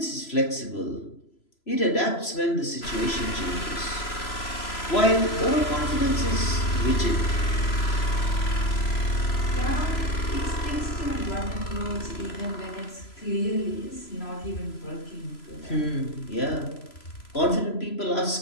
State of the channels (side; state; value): right; late; 3.0 ms